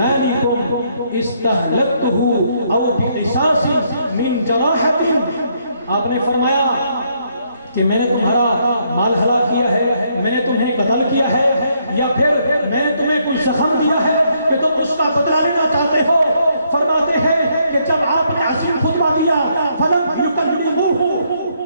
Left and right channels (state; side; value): inverted; both; correlation -0.72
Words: استہلکتہ او بقصاص من جراحت، آپ نے فرمایا کہ میں نے تمہارا مال ہلاک کیا ہے، میں نے تمہیں قتل کیا ہے، یا پھر میں نے تمہیں کوئی زخم دیا ہے کہ تم اس کا بدلہ لینا چاہتے ہو۔ فرماتے ہیں کہ جب آپ نے عظیم خطبہ دیا فَلَمْ يُكَلِّمُوهُ،